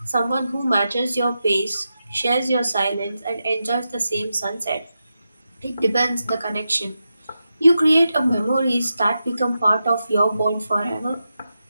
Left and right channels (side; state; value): both; inverted; correlation -0.89